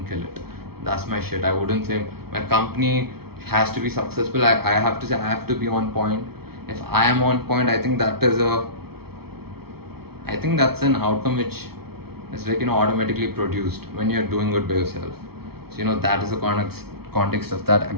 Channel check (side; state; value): left; late; 0.95 ms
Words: kill it. That's my shit. I wouldn't say my company has to be successful. I have to say, I have to be on point. If I am on point, I think that's an outcome which is like, automatically produced when you're doing good by yourself. So, that is the context of that.